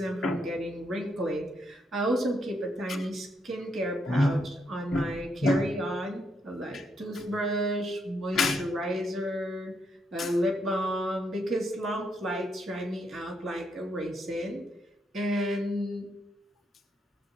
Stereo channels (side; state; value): both; normal; correlation 0.77